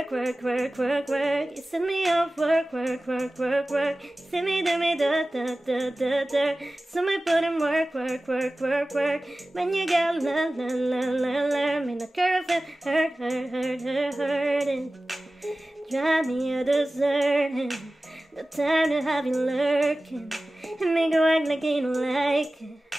work, work, work, work. You send me off work, work, work, work, work. Send me, do me, da, da, da, da, da. So me put in work, work, work, work, work. When you got la, la, la, la, la. Me no care if it hurt, hurt, hurt, hurt, hurting. Drive me a deserting. The time to have you lurking. And make you act like you don't like it.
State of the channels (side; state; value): both; normal; correlation 0.97